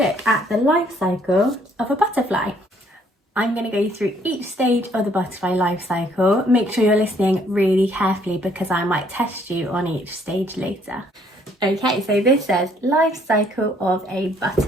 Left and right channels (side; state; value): both; normal; correlation 0.65